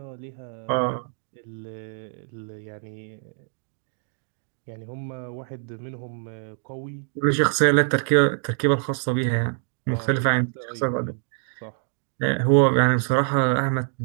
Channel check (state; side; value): silent; left; digital silence